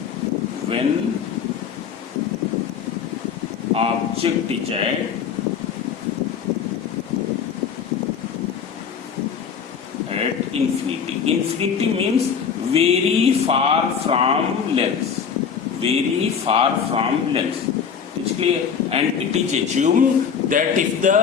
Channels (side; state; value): right; quieter; 6.9 dB